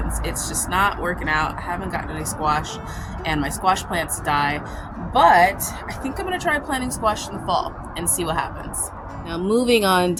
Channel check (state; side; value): identical; both; correlation 1.00